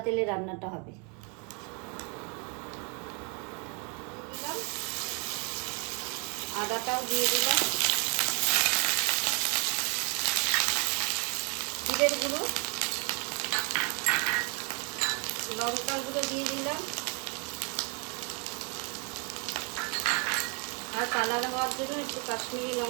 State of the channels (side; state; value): left; quieter; 35.0 dB